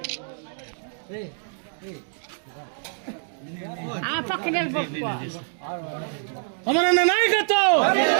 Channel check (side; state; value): left; silent; digital silence